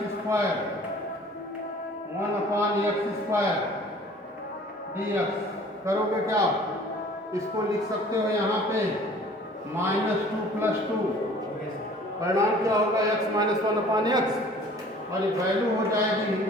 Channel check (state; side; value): normal; both; correlation 0.50